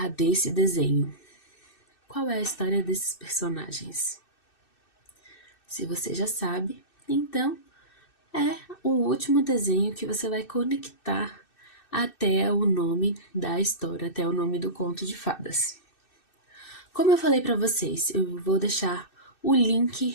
desse desenho? Qual é a história desses personagens? Se você já sabe, então é o último desenho que você vai conectar até o nome da história, até o nome do conto de fadas. Como eu falei para vocês, eu vou deixar o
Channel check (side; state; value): right; late; 2.6 ms